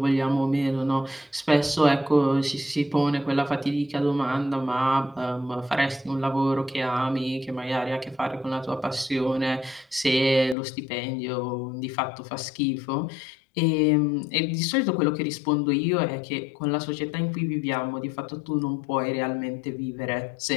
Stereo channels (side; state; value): right; drops out; at 10.6 s